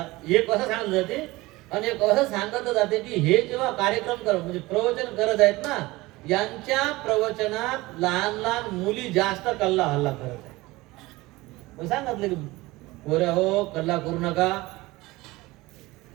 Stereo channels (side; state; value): left; quieter; 20.4 dB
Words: एक असं सांगितलं जाते. आणि एक असं सांगितलं जाते की हे जेव्हा कार्यक्रम करत, म्हणजे प्रवचन करत आहेत ना, यांच्या प्रवचनात लहान लहान मुली जास्त कल्ला हल्ला करत आहेत. मग सांगितलं की पोऱ्या हो, कल्ला करू नका,